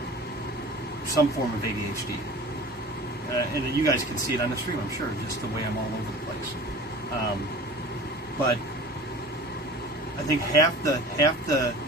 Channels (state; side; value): normal; both; correlation 0.41